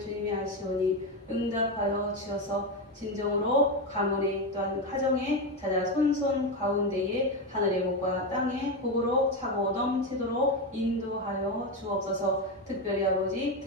아시오니 응답하여 주셔서 진정으로 가문에 또한 가정에 자자 손손 가운데에 하늘의 복과 땅의 복으로 차고 넘치도록 인도하여 주옵소서. 특별히 아버지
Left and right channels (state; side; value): normal; both; correlation 0.12